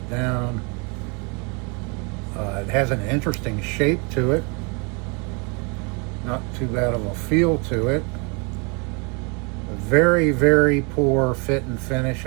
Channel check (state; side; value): quieter; left; 32.7 dB